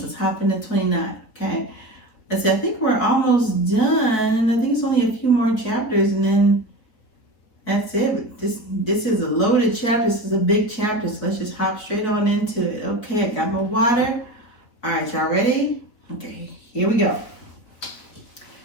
Let's hop into 29. Okay. Let's see. I think we're almost done. I think it's only a few more chapters, and then that's it. This is a loaded chapter. This is a big chapter. So let's just hop straight on into it. Okay. I got my water. All right, y'all ready? Okay. Here we go.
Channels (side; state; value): right; late; 4.8 ms